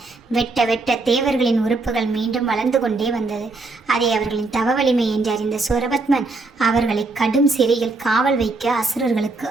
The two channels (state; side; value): quieter; left; 3.5 dB